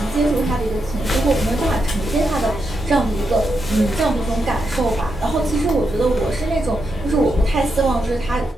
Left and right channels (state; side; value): normal; both; correlation 0.84